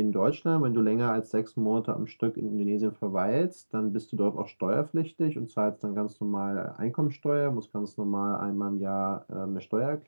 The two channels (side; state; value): both; inverted; correlation -1.00